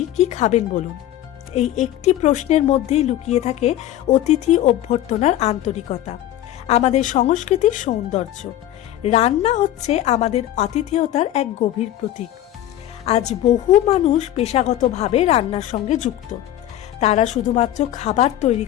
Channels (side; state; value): right; quieter; 12.9 dB